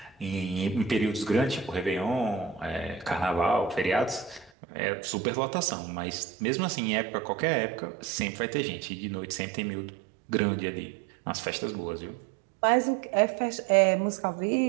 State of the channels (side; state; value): left; drops out; at 4.5 s